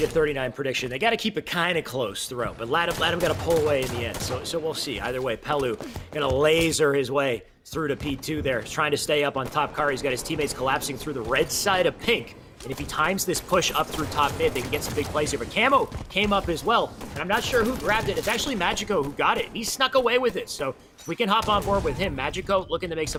39 prediction, they got to keep it kind of close throughout. But Latham got to pull away in the end. So we'll see. Either way, Pelu going to laser his way through to P2 there. He's trying to stay up on top car. He's got his teammates collapsing through the red side of pink. And if he times this push up through top mid, they can get some big plays here. But Camo came up as well. And I'm not sure who grabbed it. It's actually Magico who got it. He snuck away with it. So if we can hop on board with him, Magico looking to make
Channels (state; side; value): identical; both; correlation 1.00